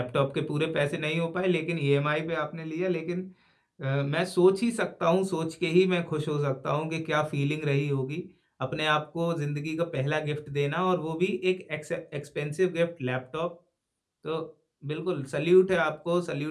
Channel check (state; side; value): identical; both; correlation 1.00